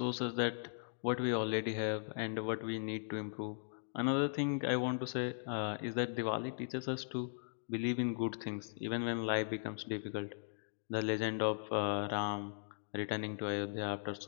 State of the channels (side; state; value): right; silent; digital silence